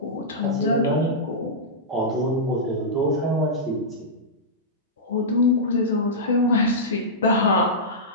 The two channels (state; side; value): normal; both; correlation -0.13